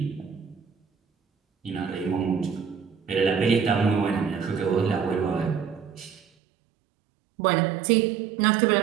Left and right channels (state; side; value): drops out; left; at 6.2 s